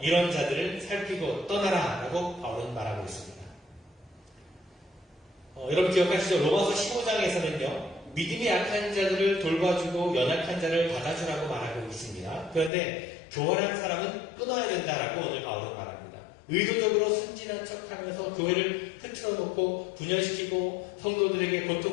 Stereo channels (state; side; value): drops out; right; at 12.7 s